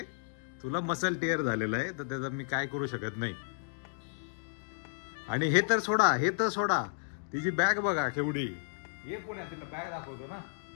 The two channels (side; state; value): right; silent; digital silence